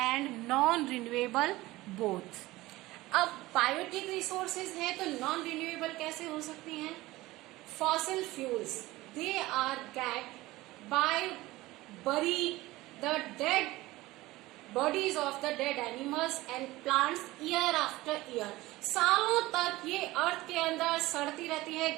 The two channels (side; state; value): left; quieter; 18.8 dB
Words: and non-renewable both. अब बायोटिक रिसोर्सेज हैं तो नॉन रिन्यूएबल कैसे हो सकती हैं? Fossil fuels, they are get by bury the dead bodies of the dead animals and plants year after year. सालों तक ये अर्थ के अंदर सड़ती रहती है,